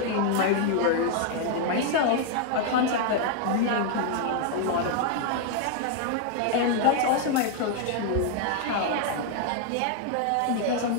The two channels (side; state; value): both; different; correlation 0.00